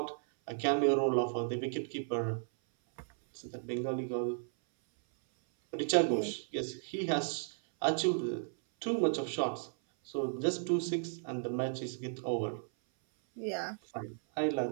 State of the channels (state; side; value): silent; left; 55 dB below the other